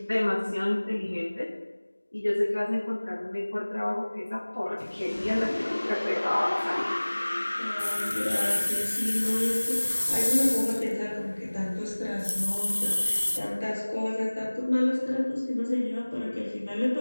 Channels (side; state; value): both; inverted; correlation -1.00